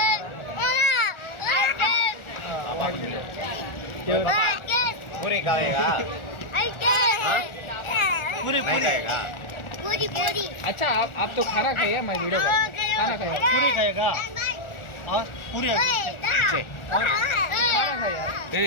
पूरी खाएगा पूरी नहीं खाएगा. अच्छा आप तो खाना खाइए. मैं वीडियो खाना खाइए. पूरी खाएगा और पूरी ఏ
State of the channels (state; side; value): late; right; 1.4 ms